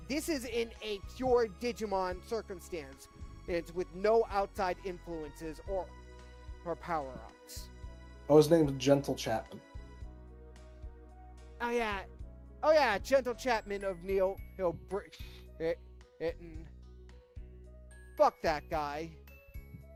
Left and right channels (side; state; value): both; identical; correlation 1.00